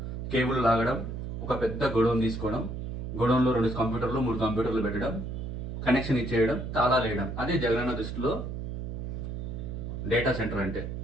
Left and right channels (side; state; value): right; noise; hum, 5 dB below the sound